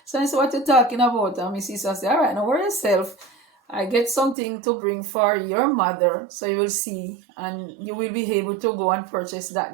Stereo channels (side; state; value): left; drops out; at 4.4 s